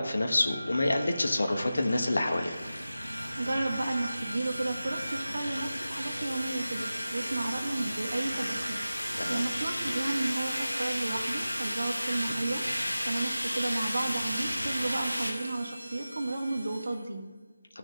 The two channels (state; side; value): inverted; both; correlation -0.95